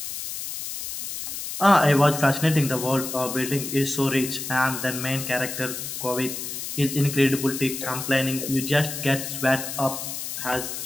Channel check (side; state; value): left; noise; hiss, 6 dB below the sound